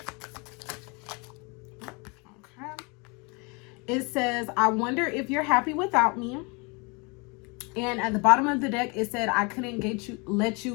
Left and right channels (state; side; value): quieter; right; 30.4 dB